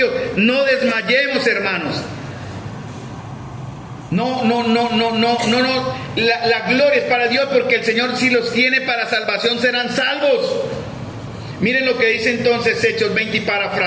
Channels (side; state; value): both; identical; correlation 1.00